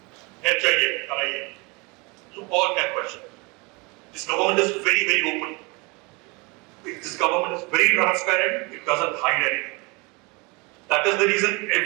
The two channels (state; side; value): quieter; left; 27.8 dB